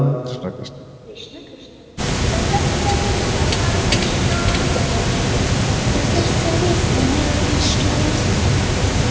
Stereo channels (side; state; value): both; identical; correlation 1.00